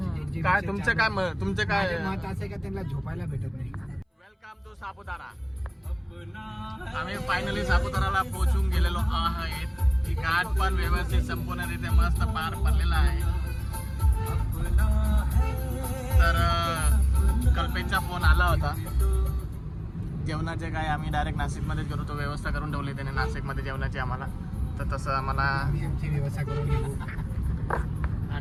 काय तुमचे काय मत असं का त्यांना झोपायला भेटत नाही. Welcome to Saputara. आम्ही फायनली सापुताराला पोहोचून गेलेलो आहेत. घाट पण व्यवस्थित संपूर्णरित्या मस्त पार पडलेला आहे. तर कल्पेशचा फोन आला होता. जेवणाचे काय आम्ही डायरेक्ट नाशिकमध्येच गेलो, तो व्यवस्था करून ठेवली त्याने नाशिकमध्ये जेवणाची आम्हाला. तर तसं आम्हाला आमची व्यवस्था करून घेऊ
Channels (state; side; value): identical; both; correlation 1.00